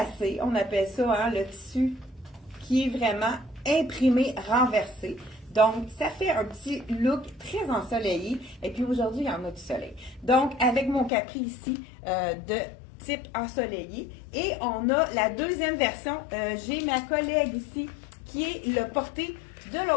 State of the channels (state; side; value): drops out; right; at 11.1 s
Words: On appelle ça hein, le tissu qui est vraiment imprimé, renversé. Donc, ça fait un petit look très ensoleillé. Et puis aujourd'hui, il y en a du soleil. Donc, avec mon capri ici de type ensoleillé. Et on a la deuxième version. J'ai ma collègue ici qui est le porté de